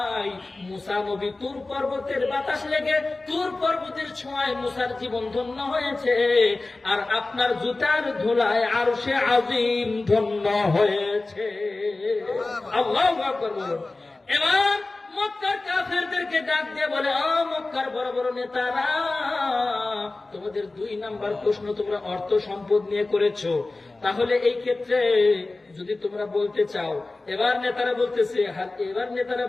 মুসা নবী তুর পর্বতের বাতাস লেগে, তুর পর্বতের ছোঁয়ায় মুসার জীবন ধন্য হয়েছে, আর আপনার জুতার ধুলায় আরশে আজিম ধন্য হয়েছে। আল্লাহু আকবার বলুন। এবার মক্কার কাফেরদেরকে ডাক দিয়ে বলে, ও মক্কার বড় বড় নেতারা, তোমাদের 2 নাম্বার প্রশ্ন তোমরা অর্থ সম্পদ নিয়ে করেছো, তাহলে এই ক্ষেত্রে যদি তোমরা বলতে চাও, এবার নেতারা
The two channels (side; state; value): right; quieter; 3.2 dB